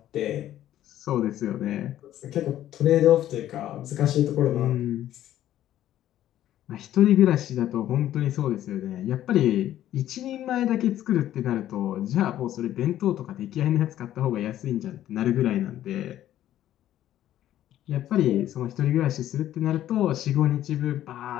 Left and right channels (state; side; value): quieter; right; 12.5 dB